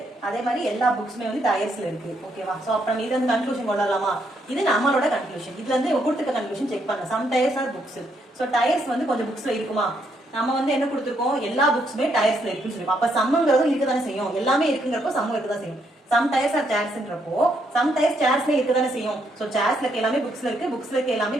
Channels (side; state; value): both; normal; correlation 0.75